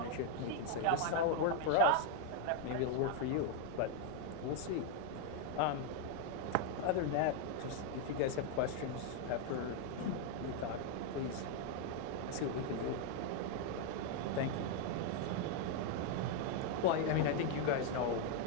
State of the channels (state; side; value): different; both; correlation 0.00